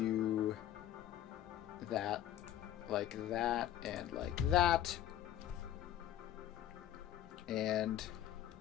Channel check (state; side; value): quieter; right; 11.7 dB